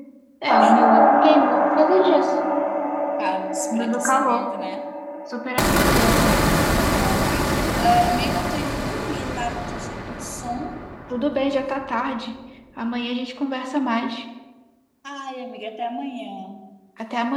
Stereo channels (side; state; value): both; identical; correlation 1.00